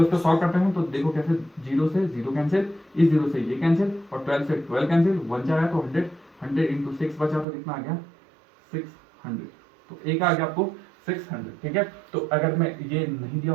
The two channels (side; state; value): left; drops out; at 7.5 s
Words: इसको सॉल्व करते हैं। तो देखो कैसे, 0 से 0 कैंसिल, इस 0 से ये कैंसिल, और 12 से 12 कैंसिल, 1 जाएगा तो 100 इंटू 6 बचा तो कितना आ गया 600। तो एक आ गया आपको 600। ठीक है, तो अगर मैं ये नहीं दिया